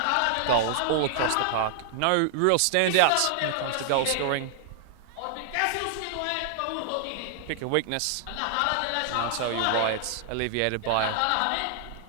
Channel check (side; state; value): both; different; correlation -0.01